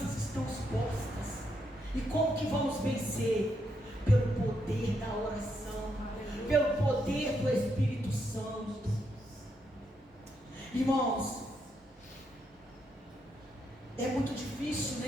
estão expostas. E como que vamos vencer? Pelo poder da oração, pelo poder do Espírito Santo. Irmãos, é muito difícil,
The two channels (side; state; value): both; normal; correlation 0.79